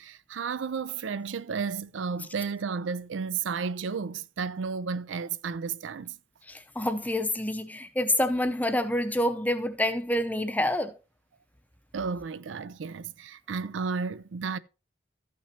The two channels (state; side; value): normal; both; correlation 0.48